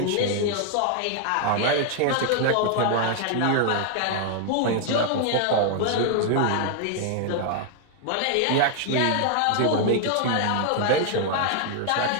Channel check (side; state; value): both; different; correlation 0.00